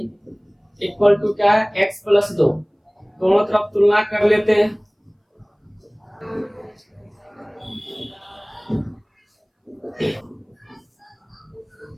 equal to क्या है? x plus 2। दोनों तरफ तुलना कर लेते हैं।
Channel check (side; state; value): both; identical; correlation 1.00